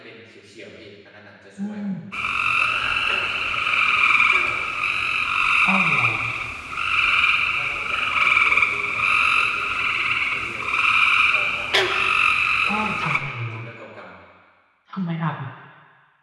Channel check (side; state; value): both; identical; correlation 1.00